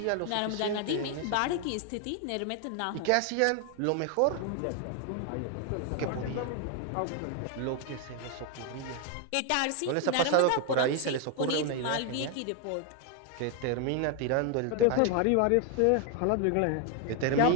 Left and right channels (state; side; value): different; both; correlation 0.01